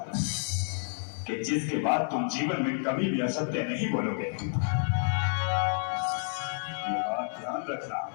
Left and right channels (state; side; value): silent; right; 58 dB below the other